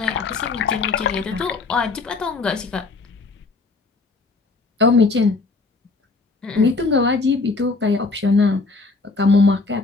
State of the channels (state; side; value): quieter; right; 3.8 dB